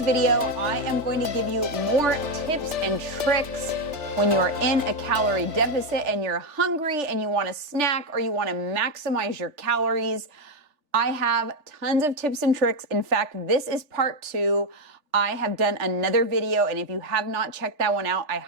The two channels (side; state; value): left; late; 3.4 ms